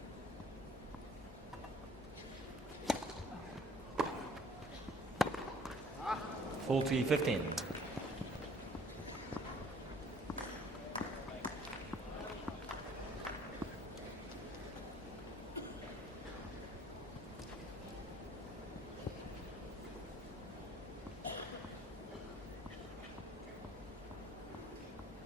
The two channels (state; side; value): normal; both; correlation 0.55